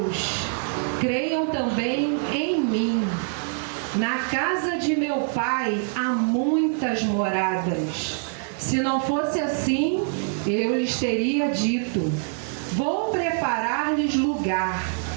creiam também em mim. Na casa de meu Pai há muitas moradas. Se não fosse assim, eu lhes teria dito: vou preparar-lhes lugar.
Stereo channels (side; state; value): left; silent; 62 dB below the other